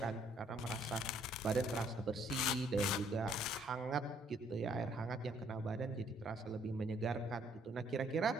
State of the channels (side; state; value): both; normal; correlation 0.65